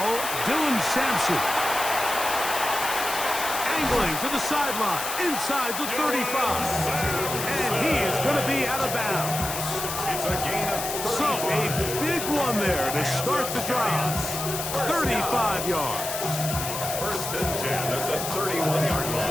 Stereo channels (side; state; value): left; noise; hiss, 5 dB below the sound